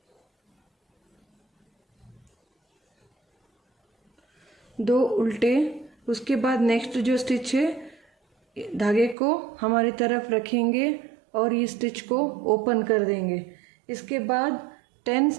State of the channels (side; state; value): left; drops out; at 9.2 s